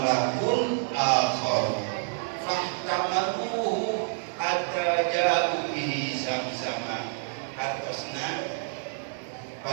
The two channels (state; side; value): silent; left; digital silence